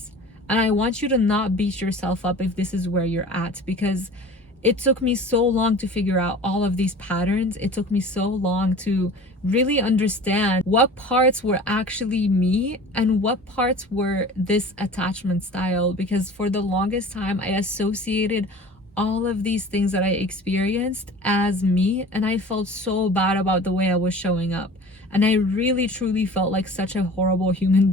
And I want you to not beat yourself up if this is where you're at, because it took me so long to figure out all of these patterns. It took me so long to really understand what parts were actually me and what parts were this attachment style, because for the longest time I associated all of these things that I experienced as me, and I felt so bad about the way I was showing up. And I really truly felt like such a horrible human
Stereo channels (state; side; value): normal; both; correlation 0.41